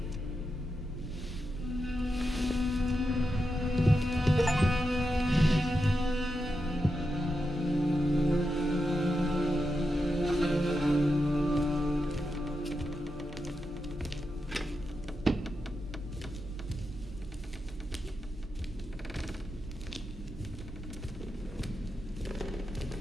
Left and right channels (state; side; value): normal; both; correlation 0.87